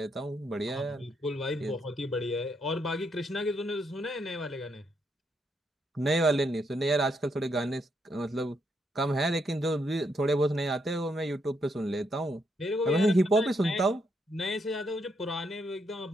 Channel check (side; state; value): both; normal; correlation 0.77